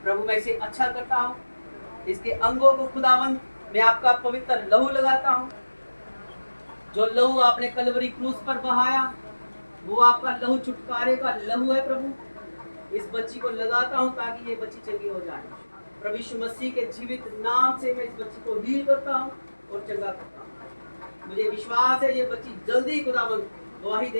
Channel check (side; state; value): both; inverted; correlation -1.00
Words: प्रभु मैं इसे अच्छा करता हूँ। इसके अंगों को खुदावंद मैं आपका पवित्र लहू लगाता हूँ। जो लहू आपने कलवरी क्रूस पर बहाया, वो आपका लहू छुटकारे का लहू है। प्रभु इस बच्ची को लगाता हूँ ताकि ये बच्ची चंगी हो जाए। प्रभु यीशु मसीह के जीवित नाम से मैं इस बच्ची को हील करता हूँ और चंगा करता हूँ। मुझे विश्वास है ये बच्ची जल्दी खुदावंद गवाही